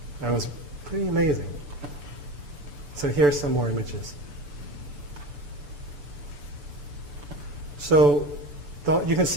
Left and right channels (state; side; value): late; left; 6.9 ms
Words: that was pretty amazing. So here's some more images. So you can